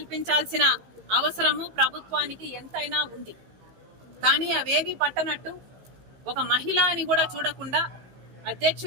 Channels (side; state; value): left; late; 15 ms